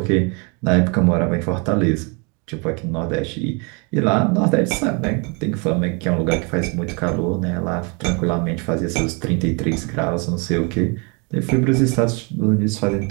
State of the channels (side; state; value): left; quieter; 32.8 dB